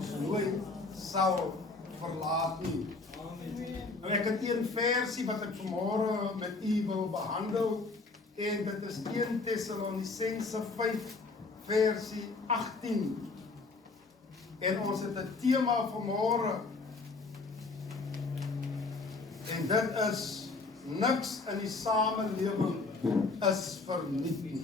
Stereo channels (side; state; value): right; quieter; 3.8 dB